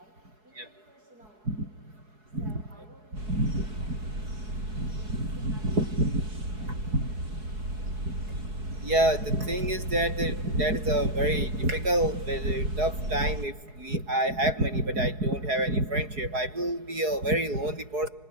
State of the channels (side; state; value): left; late; 4.7 ms